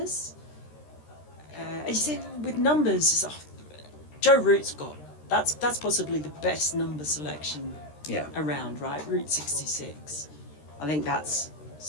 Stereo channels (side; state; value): right; late; 13 ms